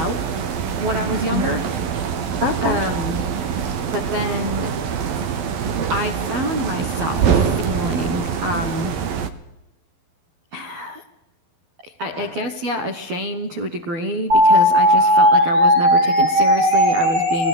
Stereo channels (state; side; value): late; left; 12 ms